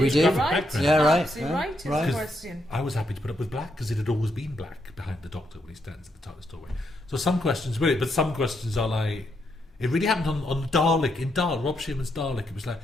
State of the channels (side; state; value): both; normal; correlation 0.78